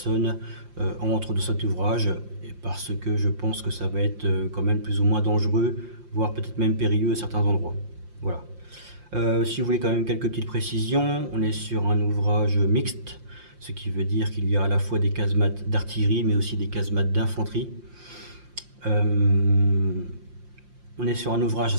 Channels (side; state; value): left; late; 5.7 ms